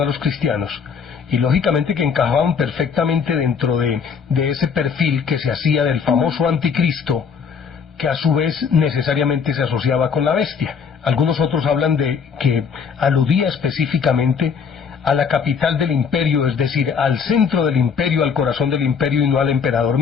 a los cristianos, y lógicamente que encajaban perfectamente dentro de ese perfil que se hacía del famoso anticristo, que a su vez necesariamente se asociaba con la bestia. Algunos otros hablan de que aludía específicamente a la capital del imperio, es decir, al centro del imperio, al corazón del imperio y no al emperador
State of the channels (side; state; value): right; quieter; 6.3 dB